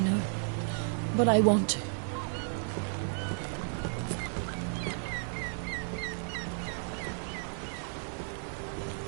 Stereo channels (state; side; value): silent; left; 56 dB below the other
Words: but I want to.